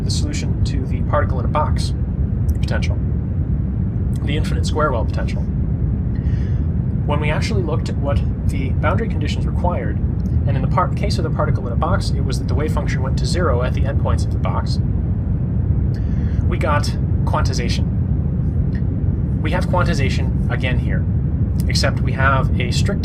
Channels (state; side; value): identical; both; correlation 1.00